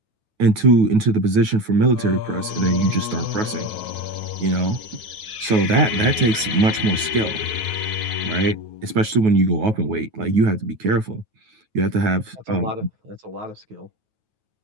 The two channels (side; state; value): left; late; 9.3 ms